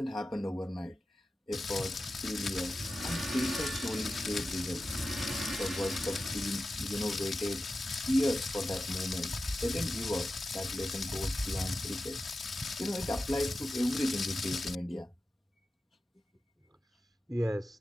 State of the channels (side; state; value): both; normal; correlation 0.93